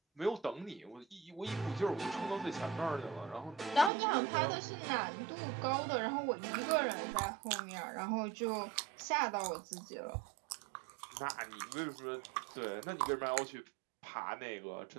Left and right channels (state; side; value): drops out; left; at 3.9 s